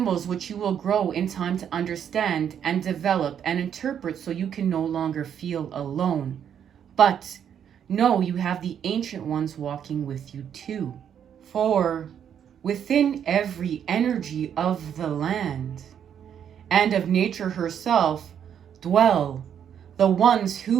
which you will grow in time to understand and develop and interpret, so you can no longer feel alone. But know you have the ancient ones walking with you too. For within every energy of the land and of nature herself dwell the ones who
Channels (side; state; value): left; quieter; 8.8 dB